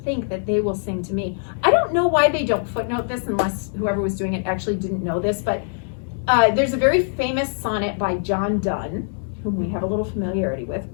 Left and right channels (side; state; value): right; silent; digital silence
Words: think that they will sing to me. I don't know why they don't footnote this unless whoever was doing it actually didn't know this, but there's a very famous sonnet by John Donne, whom we have a little familiarity with,